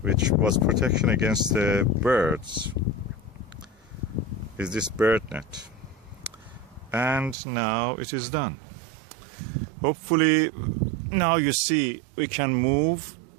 which was protection against the birds, is this bird net. And now it is done. Hopefully, now you see we can move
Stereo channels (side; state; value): left; drops out; at 7.4 s